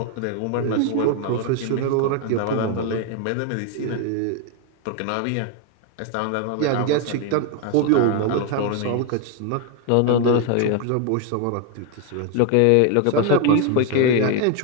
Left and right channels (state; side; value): different; both; correlation 0.01